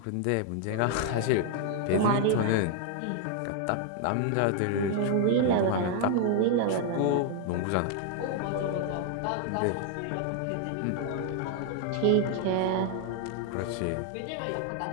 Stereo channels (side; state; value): both; different; correlation 0.00